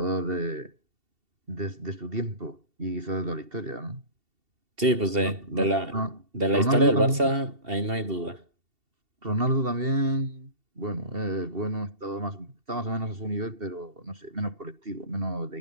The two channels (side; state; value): left; late; 2.7 ms